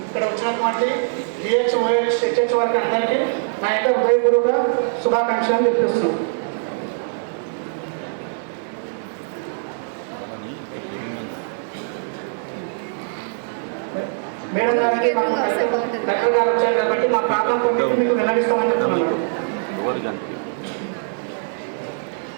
ఇక్కడ వచ్చినటువంటి డిహెచ్, ఓహెచ్, హెచ్హెచ్ వారికి అందరికీ నా యొక్క హృదయపూర్వక శుభాకాంక్షలు చెప్పిస్తున్నాం. మేడం గారికి కలెక్టర్ గారు వచ్చారు కాబట్టి మా ప్రాబ్లం కొట్టి మీకు వెల్లడిస్తామని చెప్తున్నాను.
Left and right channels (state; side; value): silent; left; digital silence